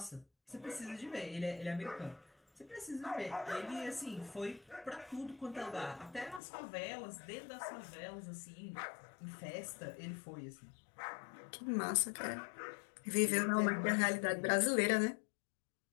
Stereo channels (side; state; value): right; drops out; at 6.4 s